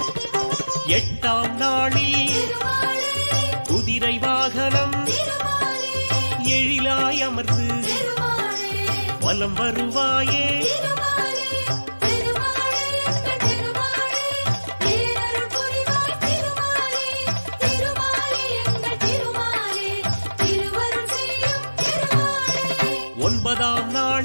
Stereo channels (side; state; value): both; inverted; correlation -1.00